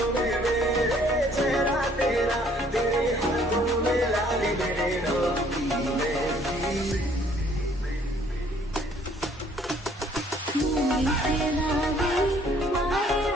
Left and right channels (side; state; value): both; normal; correlation 0.61